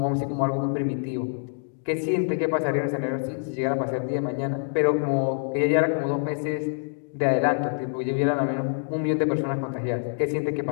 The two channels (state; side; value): silent; right; digital silence